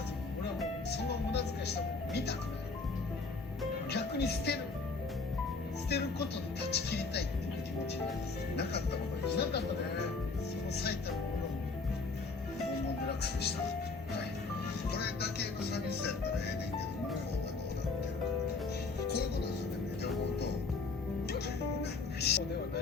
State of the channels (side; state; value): right; quieter; 4.1 dB